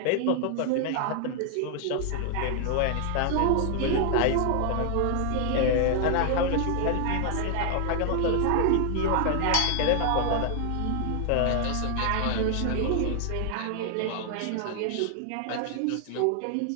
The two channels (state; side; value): different; both; correlation 0.00